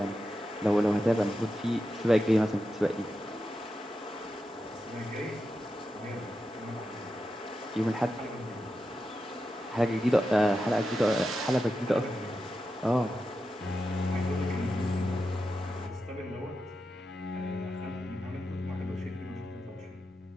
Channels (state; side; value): normal; both; correlation 0.89